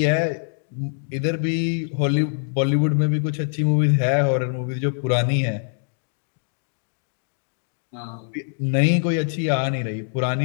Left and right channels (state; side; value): silent; right; digital silence